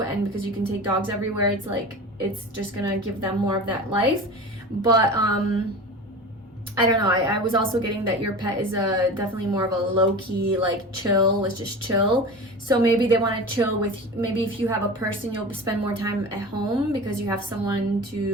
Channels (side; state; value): both; normal; correlation 0.32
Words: because you can take dogs everywhere, it's just gonna give them more of that life. But I don't know, I was also getting that your pet is definitely more of a low-key, chill, let's just chill. So maybe they want to chill with, maybe if you have a person, you'll spend more time at home because you have someone